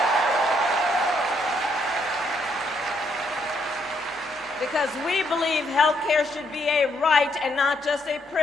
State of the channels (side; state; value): both; normal; correlation 0.73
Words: Because we believe health care should be a right and not just a